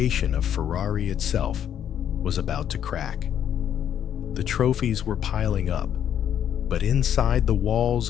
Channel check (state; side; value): quieter; right; 9.6 dB